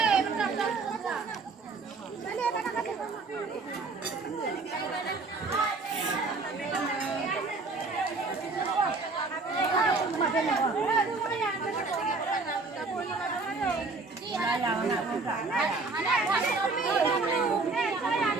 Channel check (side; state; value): left; quieter; 3.8 dB